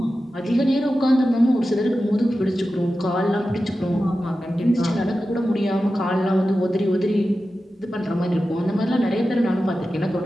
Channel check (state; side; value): normal; both; correlation 0.93